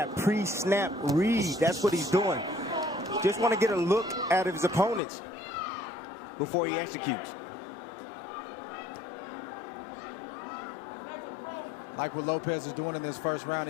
pre-snap read, that's what he's doing. Just want to get a look at his opponents before he executes. Like what Lopez is doing in this first round,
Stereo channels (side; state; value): right; drops out; at 5.0 s